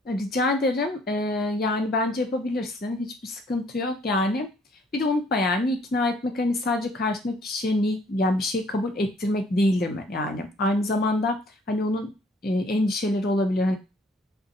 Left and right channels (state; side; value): normal; both; correlation 0.61